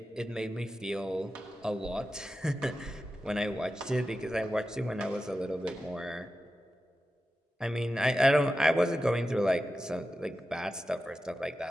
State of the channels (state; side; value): normal; both; correlation 0.92